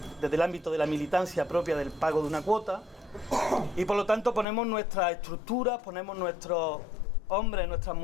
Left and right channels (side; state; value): right; drops out; at 4.5 s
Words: desde el ámbito de la militancia propia del pago de una cuota, y por lo tanto ponemos nuestras estructuras, ponemos nuestros hombres, nuestras